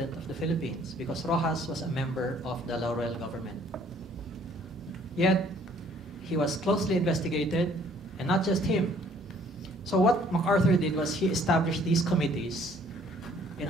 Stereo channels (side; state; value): both; normal; correlation 0.60